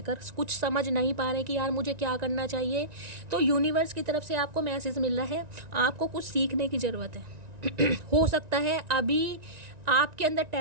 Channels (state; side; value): late; left; 1.9 ms